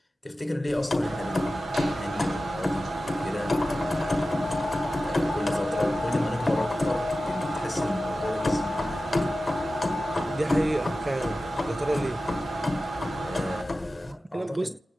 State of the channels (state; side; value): normal; both; correlation 0.94